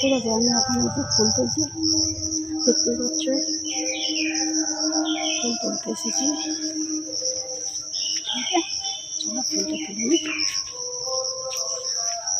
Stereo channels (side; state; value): both; identical; correlation 1.00